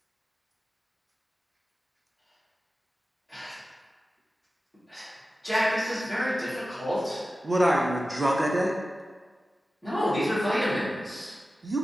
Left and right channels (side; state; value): both; normal; correlation 0.95